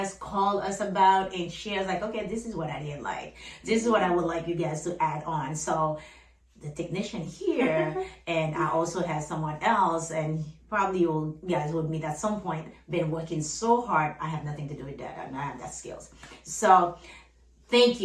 called us about, and shared like, okay, this is what I didn't like. This is what I would like you guys to add on. So the technician here and I also have someone else, and probably you guys would meet at some point, been working so hard. I have nothing to do with that. I don't have that skills. So thank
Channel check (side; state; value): both; identical; correlation 1.00